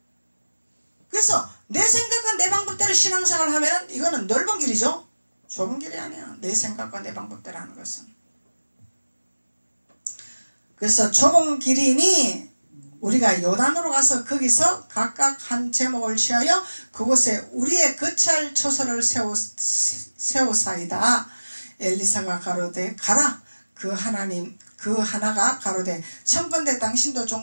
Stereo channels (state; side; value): inverted; both; correlation -1.00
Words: 그래서 내 생각과 내 방법대로 신앙생활을 하면 이거는 넓은 길이죠. 좁은 길이 아니야. 내 생각과 내 방법대로 하는 것은. 그래서 좁은 길이니 우리가 요단으로 가서 거기서 각각 한 제목을 취하여 그곳에 우리의 거처할 처소를 세우사이다. 엘리사가 가로되 가라. 그 하나가 가로되 청컨대 당신도